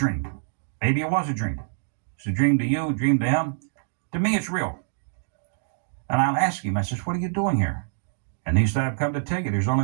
Maybe it was a dream. It's a dream to you, a dream to him. To me, it's real. And I'll ask him, I says, what are you doing here? And he said, I've come to tell you, there's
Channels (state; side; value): silent; left; digital silence